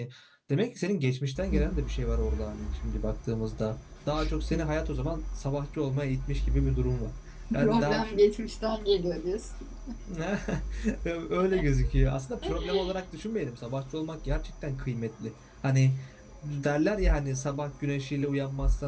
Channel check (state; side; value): identical; both; correlation 1.00